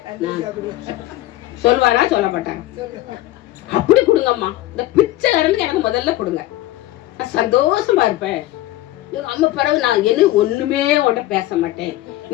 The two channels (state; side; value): quieter; right; 16.0 dB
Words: நான் சொல்வாரா சொல்ல மாட்டான். அப்படி கொடுங்கம்மா, இந்த பிச்சைக்காரனுக்கு எனக்கு முதல்ல கொடுங்க, நான் சந்தோஷமா இருப்பேன். எங்க அம்மா பிறகு நான் என்ன ஒண்ணுமே உன்ட பேச மாட்டேன்,